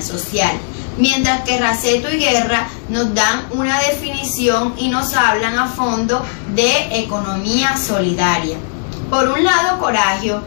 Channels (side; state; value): right; silent; digital silence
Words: social, mientras que Raceto y Guerra nos dan una definición y nos hablan a fondo de economía solidaria. Por un lado, Coragio